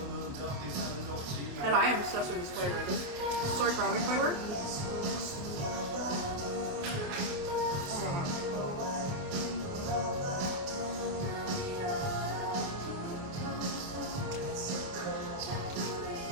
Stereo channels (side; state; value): left; late; 28 ms